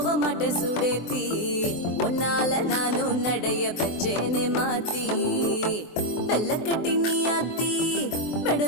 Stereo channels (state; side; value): late; right; 24 ms